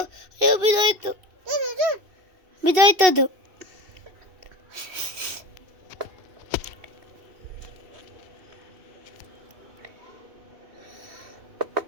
ಅಯ್ಯೋ ಬಿದ್ದೋಯ್ತು, ಬಿದ್ದೋಯ್ತದು.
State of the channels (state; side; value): late; left; 2.7 ms